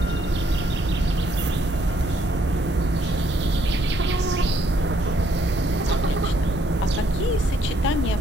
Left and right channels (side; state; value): both; normal; correlation 0.69